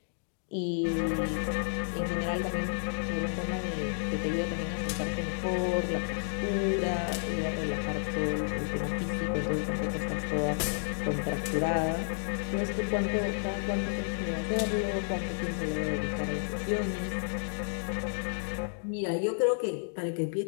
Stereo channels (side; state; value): right; silent; digital silence